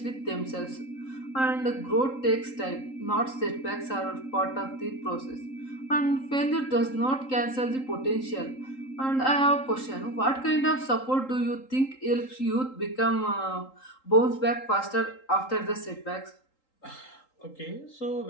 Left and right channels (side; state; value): right; late; 3.8 ms